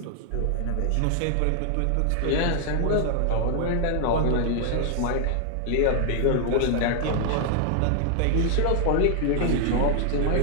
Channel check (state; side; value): different; both; correlation 0.00